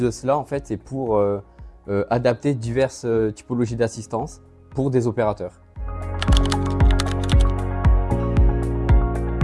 cela, en fait, c'est pour adapter diverses typologies d'assistance pour des opérateurs.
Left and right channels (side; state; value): both; identical; correlation 1.00